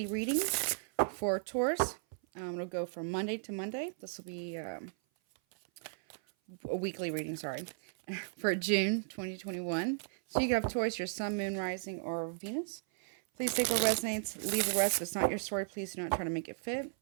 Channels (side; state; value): left; silent; 54 dB below the other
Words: reading for Taurus. It'll go from Monday to Monday. This will be a weekly reading, for June 2021. So you can have Taurus, your Sun, Moon, Rising, or Venus. Please take what resonates, leave the rest. If it's not your story, please do not try to make it fit.